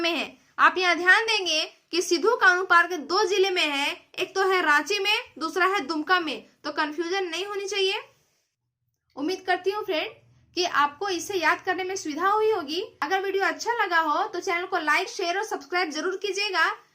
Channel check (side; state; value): both; identical; correlation 1.00